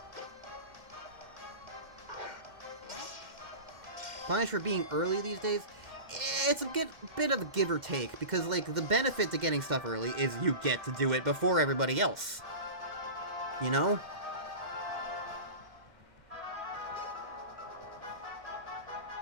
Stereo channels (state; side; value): late; left; 2.1 ms